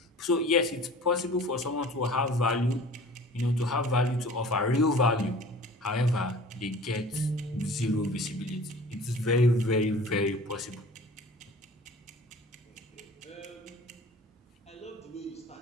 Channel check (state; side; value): normal; both; correlation 0.44